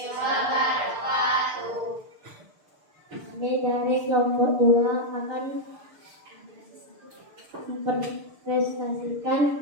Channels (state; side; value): late; left; 6.7 ms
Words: Kami dari kelompok 2 akan mempresentasikan